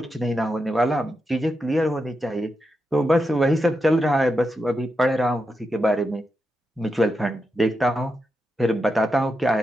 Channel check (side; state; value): both; normal; correlation 0.87